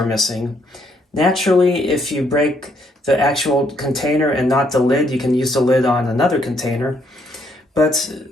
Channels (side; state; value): both; normal; correlation 0.71